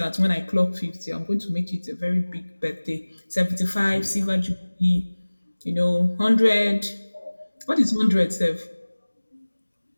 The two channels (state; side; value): inverted; both; correlation -1.00